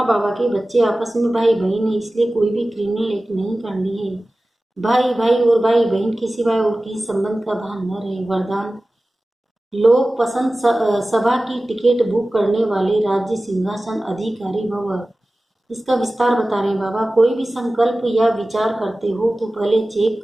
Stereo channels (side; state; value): both; normal; correlation 0.97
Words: बाबा के बच्चे, आपस में भाई बहन है, इसलिए कोई भी क्रिमिनल नहीं करनी है। भाई भाई और भाई बहन के सिवाय और किसी संबंध का भान न रहे। वरदान लोक पसंद सभा की टिकट बुक करने वाले राज्य सिंहासन अधिकारी भव। इसका विस्तार बता रहे हैं बाबा। कोई भी संकल्प या विचार करते हो तो पहले चेक